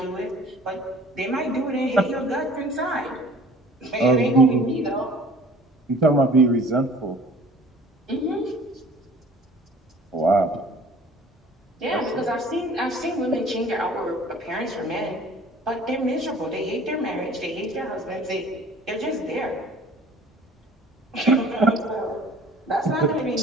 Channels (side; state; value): both; normal; correlation 0.49